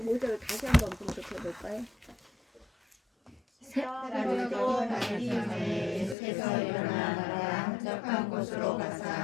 다시 한번 분석해 볼까요? 새벽에도 밝기 전에 예수께서 일어나 한적한 곳으로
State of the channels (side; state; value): right; drops out; at 6.2 s